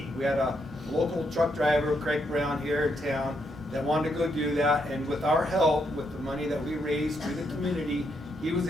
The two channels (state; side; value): normal; both; correlation 0.78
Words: We had a local truck driver, Craig Brown, here in town that wanted to go do that, and with our help, with the money that we raised through the community, he was